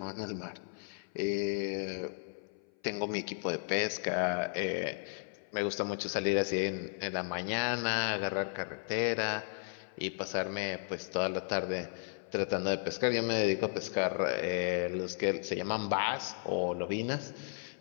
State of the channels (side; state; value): right; silent; 55 dB below the other